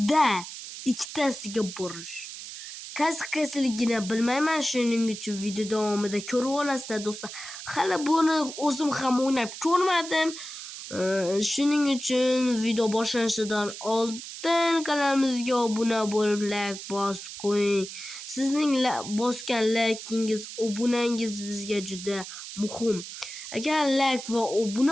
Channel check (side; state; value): right; noise; hiss, 11 dB below the sound